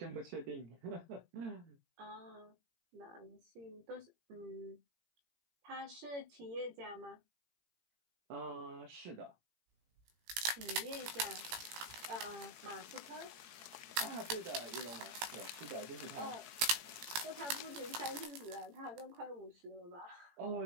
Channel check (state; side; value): late; left; 18 ms